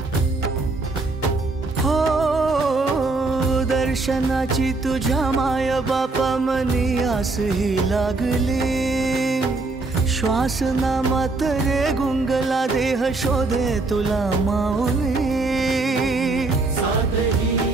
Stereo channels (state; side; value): quieter; left; 3.4 dB